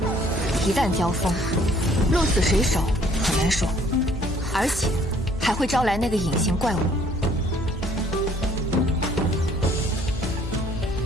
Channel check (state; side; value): normal; both; correlation 0.60